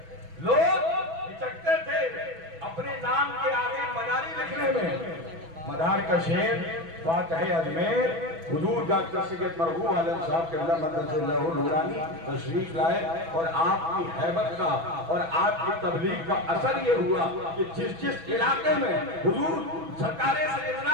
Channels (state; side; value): late; left; 6.1 ms